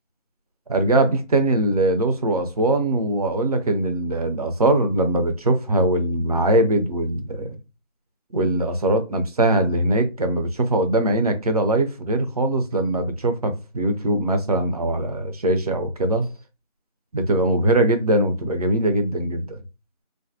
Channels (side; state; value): both; inverted; correlation -0.34